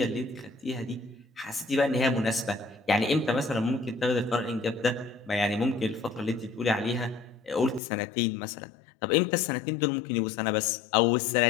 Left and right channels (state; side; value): drops out; right; at 7.8 s